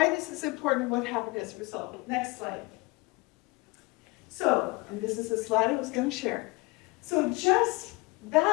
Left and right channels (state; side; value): quieter; right; 25.0 dB